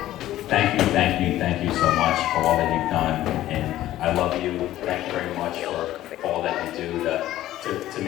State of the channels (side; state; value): right; quieter; 14.1 dB